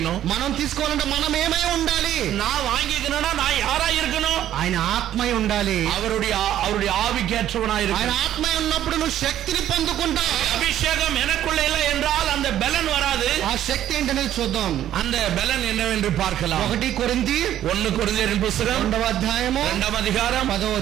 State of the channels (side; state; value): left; quieter; 11.8 dB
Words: మనం తీసుకోవాలంటే మనం ఏమై ఉండాలి? நான் வாங்கிக்கணும்னா நான் யாரா இருக்கணும்? ఆయన ఆత్మై ఉండాలి. அவருடைய ஆவிக்கேற்றவனா இருக்கணும். ఆయన ఆత్మై ఉన్నప్పుడు నువ్వు శక్తిని పొందుకుంటావు. அபிஷேகம் எனக்குள்ள இல்லை என்றால் அந்த பலன் வராது. ఆ శక్తి ఏంటనేది చూద్దాం. அந்த பலன் என்னவென்று பார்க்கலாம். 1 కొరింథీ పుస్తకం 2వ అధ్యాయము 2వ అధికారం 10వ